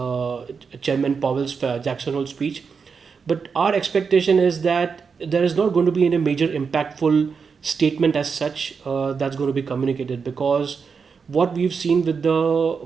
Chairman Powell's Jackson Hole speech. But our expectation is that there is not going to be any major impactful statement as such that's going to be communicated, because what we've seen with the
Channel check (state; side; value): quieter; left; 5.6 dB